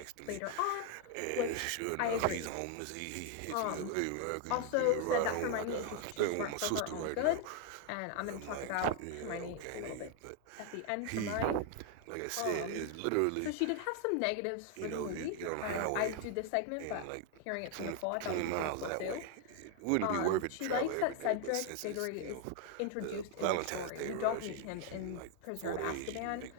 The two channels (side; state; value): both; different; correlation 0.01